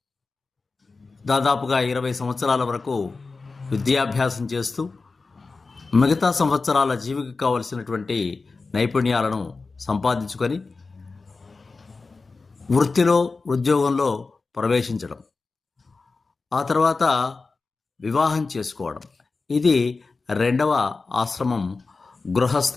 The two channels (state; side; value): quieter; right; 4.0 dB